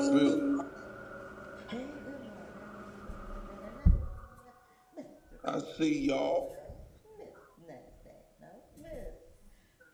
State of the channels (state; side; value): identical; both; correlation 1.00